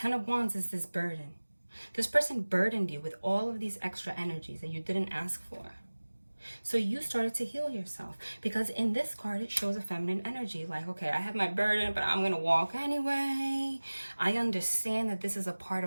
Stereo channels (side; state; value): both; inverted; correlation -1.00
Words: of Wands is this burden. This person burdened you with all of these extra energies that you didn't ask for. So you started to heal yourself, because in this card, it shows a feminine energy. Like, okay, I have my burden, but I'm going to walk anyway. I understand that this is a part